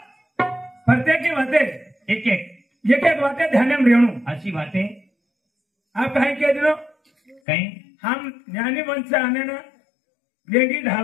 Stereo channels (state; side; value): drops out; right; at 7.4 s